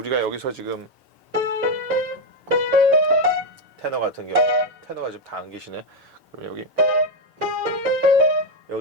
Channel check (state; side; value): normal; both; correlation 0.06